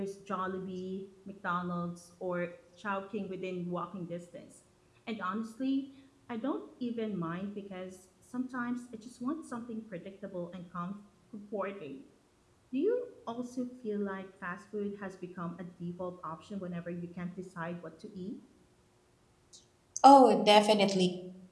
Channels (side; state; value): both; identical; correlation 1.00